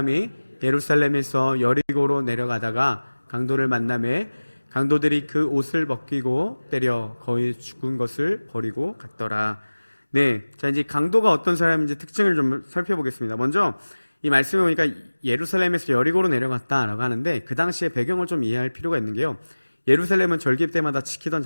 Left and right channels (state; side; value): inverted; both; correlation -1.00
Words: 예루살렘에서 여리고로 내려가다가 강도를 만나매 강도들이 그 옷을 벗기고 때려 거의 죽은 것을 버리고 갔더라. 네, 자, 이제 강도가 어떤 사람인지 특징을 좀 살펴보겠습니다. 먼저 이 말씀에 보니까 예루살렘에서 여리고로 내려갔다라고 하는데, 그 당시의 배경을 좀 이해할 필요가 있는 게요, 예루살렘은 절기 때마다 지키던